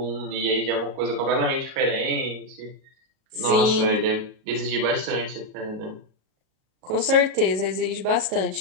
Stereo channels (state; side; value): late; left; 37 ms